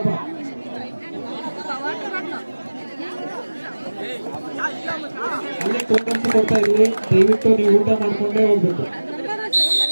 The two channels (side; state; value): both; inverted; correlation -1.00